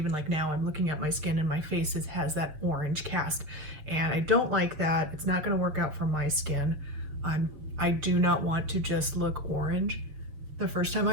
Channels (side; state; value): left; late; 6.8 ms